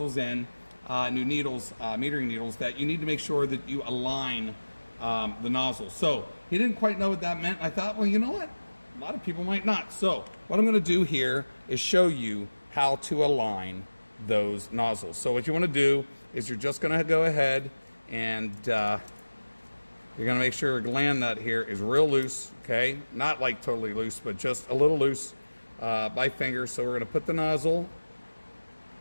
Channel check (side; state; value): both; inverted; correlation -1.00